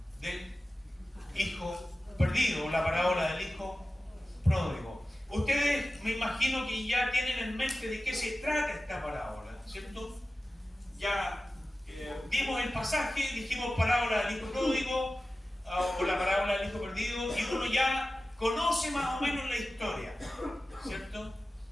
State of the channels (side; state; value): both; normal; correlation 0.95